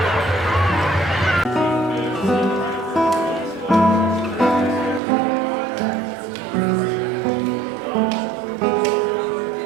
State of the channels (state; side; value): drops out; left; at 5.0 s